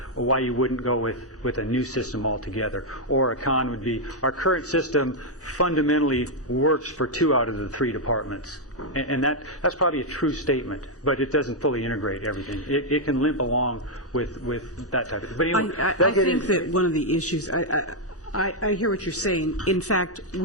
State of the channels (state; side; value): normal; both; correlation -0.02